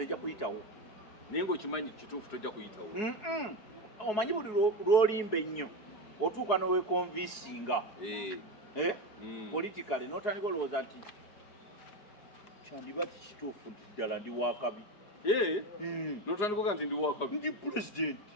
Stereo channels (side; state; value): right; late; 4.7 ms